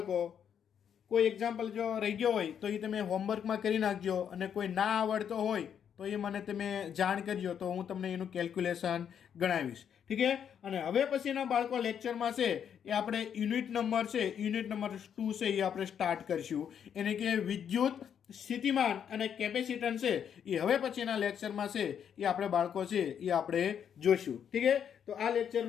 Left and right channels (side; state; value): right; quieter; 8.4 dB